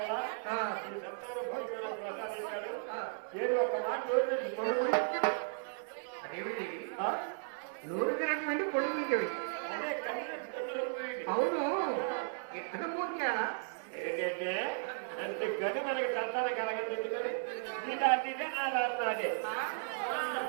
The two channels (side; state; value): left; silent; digital silence